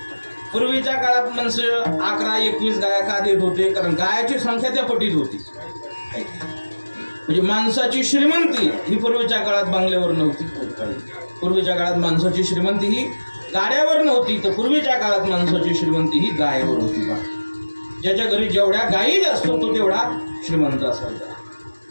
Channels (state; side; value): inverted; both; correlation -1.00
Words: पूर्वीच्या काळात माणसं 11-21 गाया का देत होते, कारण गायाची संख्या त्या पटीत होती. म्हणजे माणसाची श्रीमंती ही पूर्वीच्या काळात बंगल्यावर नव्हती. पूर्वीच्या काळात माणसाची श्रीमंती ही गाड्यावर नव्हती, तर पूर्वीच्या काळात माणसाची श्रीमंती ही गायेवर होती. बा ज्याच्या घरी जेवढ्या गायी असतो तो तेवढा श्रीमंत असायचा.